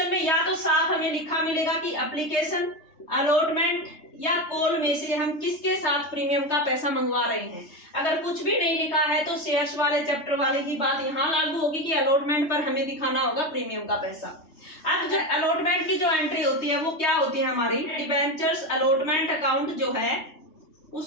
में या तो साफ हमें लिखा मिलेगा कि एप्लीकेशन, अलॉटमेंट या कॉल में से हम किसके साथ प्रीमियम का पैसा मंगवा रहे हैं। अगर कुछ भी नहीं लिखा है तो शेयर्स वाले चैप्टर वाले की बात यहाँ लागू होगी कि अलॉटमेंट पर हमें दिखाना होगा प्रीमियम का पैसा। अब जो अलॉटमेंट की जो एंट्री होती है वो क्या होती है हमारी, डिबेंचर्स अलॉटमेंट अकाउंट जो है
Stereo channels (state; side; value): late; right; 3.2 ms